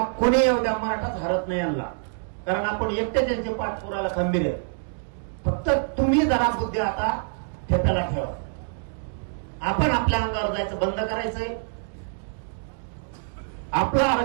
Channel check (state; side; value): silent; left; digital silence